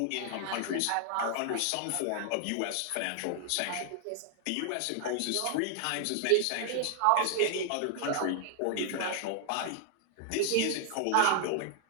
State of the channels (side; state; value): both; different; correlation 0.00